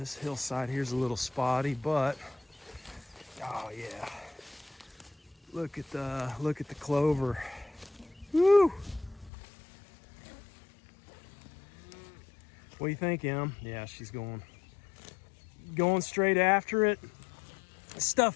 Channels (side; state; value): right; drops out; at 9.3 s